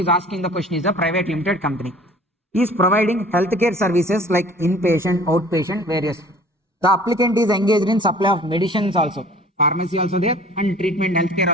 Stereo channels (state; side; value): normal; both; correlation 0.48